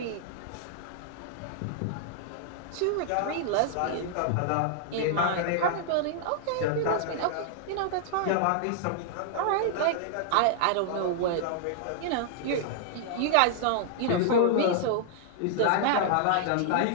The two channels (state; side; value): different; both; correlation -0.01